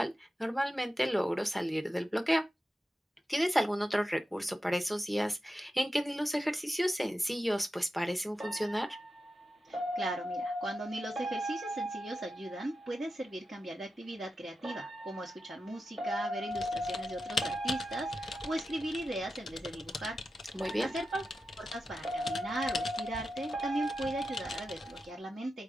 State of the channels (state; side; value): normal; both; correlation 0.91